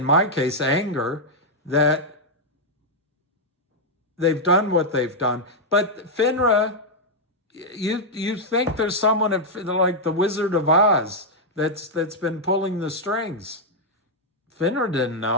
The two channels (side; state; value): both; normal; correlation -0.03